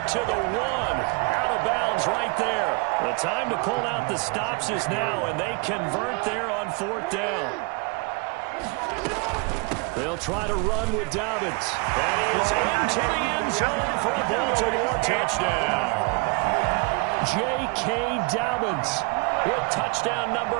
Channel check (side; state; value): left; quieter; 29.9 dB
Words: to the 1. Out of bounds right there. The time to pull out the stops is now, and they convert there on 4th down. They'll try to run with Dobbins. And he is into the end zone for a Baltimore touchdown. J.K. Dobbins with touchdown